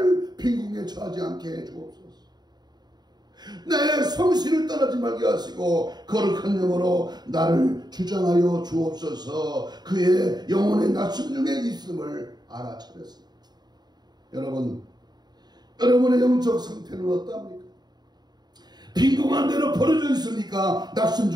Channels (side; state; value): left; late; 0.20 ms